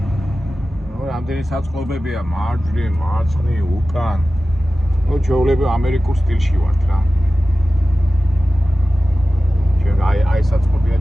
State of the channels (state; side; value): normal; both; correlation 0.95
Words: რამდენი საწყობებია მარჯვნივ, მარცხნივ, უკან. ჩვეულებრივ ამერიკულ სტილში ვართ რა. ჩვენ აი საწყობია